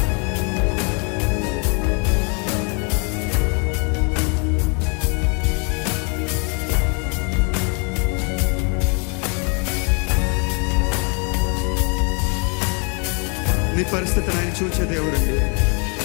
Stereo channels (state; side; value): quieter; right; 35.4 dB